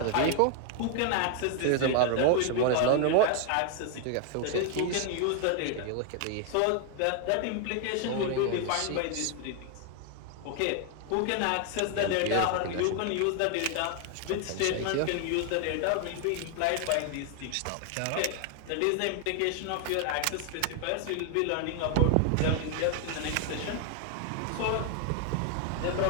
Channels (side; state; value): both; different; correlation 0.00